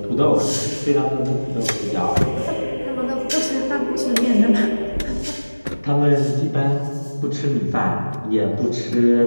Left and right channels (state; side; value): inverted; both; correlation -1.00